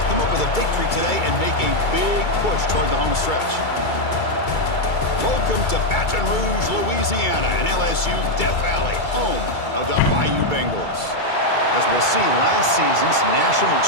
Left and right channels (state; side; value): late; right; 2.3 ms